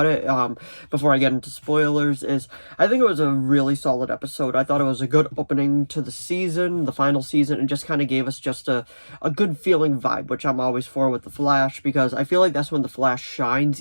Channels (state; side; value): inverted; both; correlation -1.00